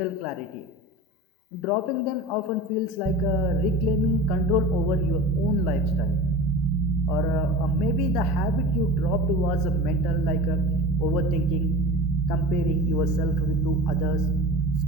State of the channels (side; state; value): both; normal; correlation 0.34